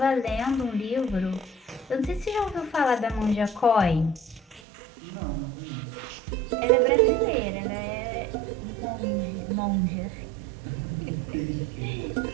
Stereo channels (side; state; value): left; drops out; at 4.6 s